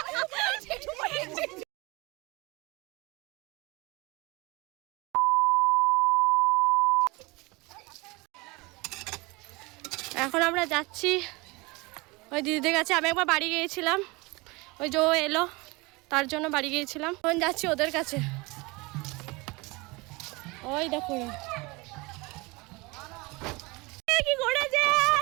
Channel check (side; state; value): left; quieter; 25.0 dB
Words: এখন আমরা যাচ্ছি ওই দিদিদের কাছে। আমি একবার বাড়ি গিয়েছিলাম, ওই যে ও এলো তার জন্য বাড়ি গিয়েছিলাম। এখন যাচ্ছি ওদের কাছে। ওই দেখো কি করেছে,